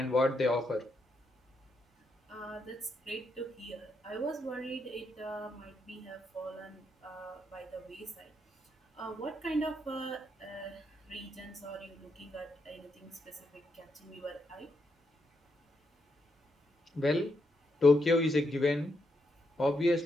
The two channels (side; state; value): both; normal; correlation 0.80